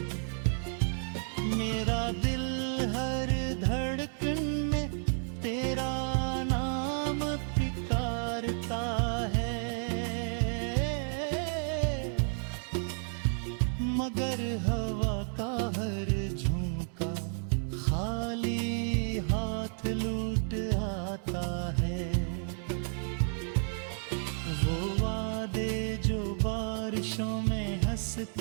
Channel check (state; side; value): silent; left; 57 dB below the other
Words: मेरा दिल हर धड़कन में तेरा नाम पुकारता है। मगर हवा का हर झोंका खाली हाथ लूट आता है। वो वादे जो बारिशों में